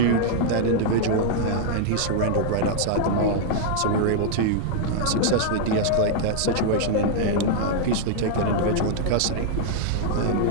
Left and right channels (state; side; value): different; both; correlation -0.01